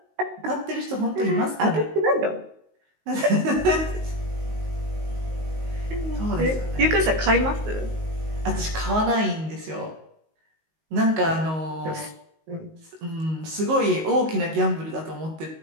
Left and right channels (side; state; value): left; late; 19 ms